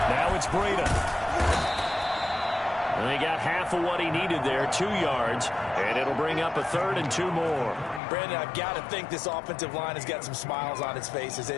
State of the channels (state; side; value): drops out; right; at 8.0 s